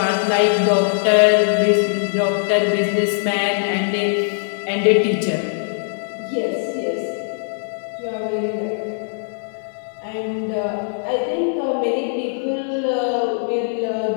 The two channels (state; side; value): silent; right; 58 dB below the other